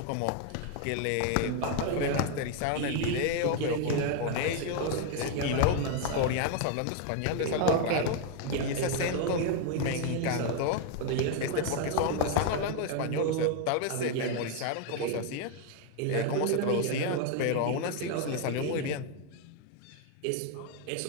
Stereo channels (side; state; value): both; different; correlation 0.01